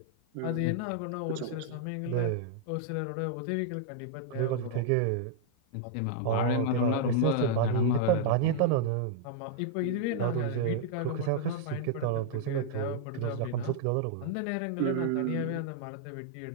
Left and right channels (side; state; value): both; different; correlation -0.01